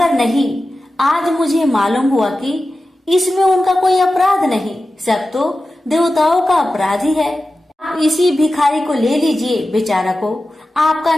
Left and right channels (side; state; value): both; normal; correlation 0.93